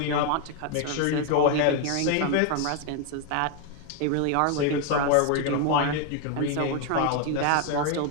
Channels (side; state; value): both; different; correlation 0.01